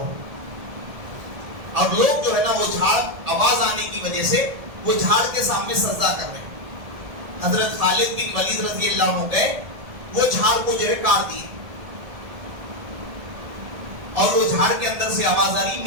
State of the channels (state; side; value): late; left; 1.7 ms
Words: اور لوگ جو ہے نا وہ جھاڑ آواز آنے کی وجہ سے وہ جھاڑ کے سامنے سجدہ کر رہے ہیں. حضرت خالد بن ولید رضی اللہ عنہ گئے، وہ جھاڑ کو جو ہے کاٹ دیے. اور وہ جھاڑ کے اندر سے آواز آ رہی